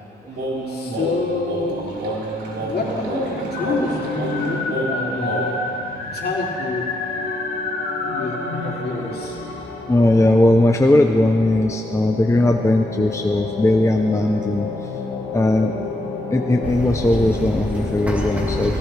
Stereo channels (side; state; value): both; normal; correlation 0.80